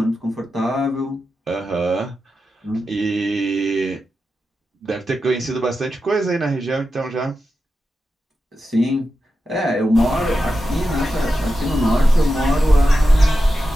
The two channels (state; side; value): normal; both; correlation 0.90